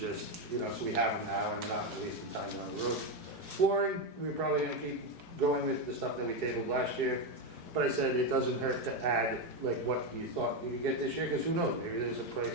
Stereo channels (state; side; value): late; left; 4.7 ms